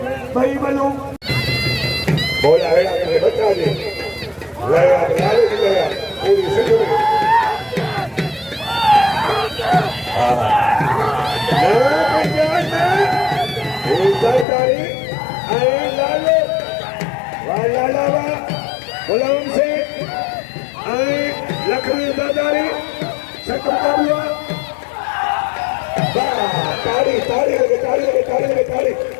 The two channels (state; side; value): drops out; right; at 14.5 s